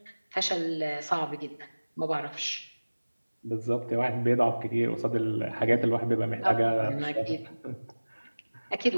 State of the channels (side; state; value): both; inverted; correlation -1.00